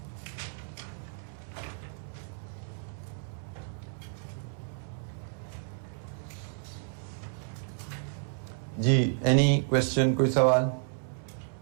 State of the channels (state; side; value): silent; left; 57 dB below the other